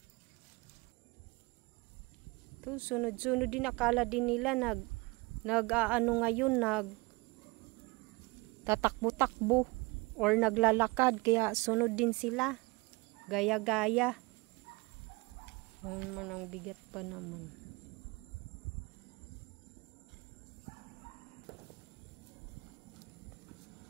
Sunod-sunod din, akala din nila nag-aano ngayon, tatakbo-takbo or naglalakad, kaya sunod din sila, gaya-gaya. Man, ang bigat pa naman.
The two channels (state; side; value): quieter; left; 25.7 dB